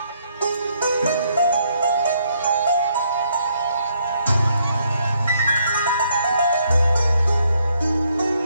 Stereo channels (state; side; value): inverted; both; correlation -0.72